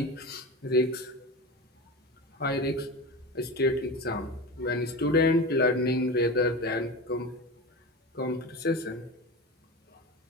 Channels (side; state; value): both; normal; correlation 0.27